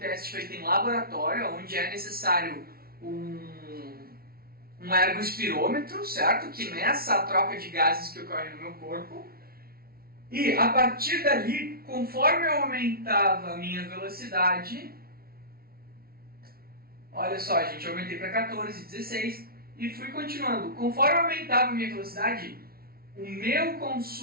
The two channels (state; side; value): late; left; 0.44 ms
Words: feito em laboratório, onde é necessário um ergospirômetro, certo? Que meça a troca de gases que ocorre no meu corpo. E a partir dali, conforme eu aumentava a minha velocidade, olha só, gente, eu aumentei para 14, 16 e fui continuando. Conforme eu aumentava a minha velocidade, o meu